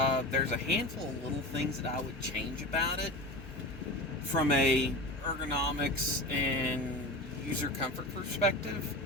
There's a handful of little things that I would change about it from a ergonomics and user comfort perspective.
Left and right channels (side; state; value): both; normal; correlation 0.29